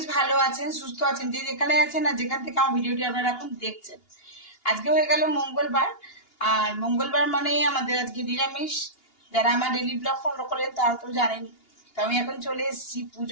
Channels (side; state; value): right; late; 2.8 ms